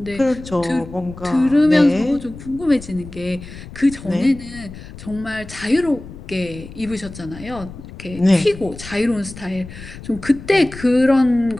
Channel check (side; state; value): left; noise; rumble, 15 dB below the sound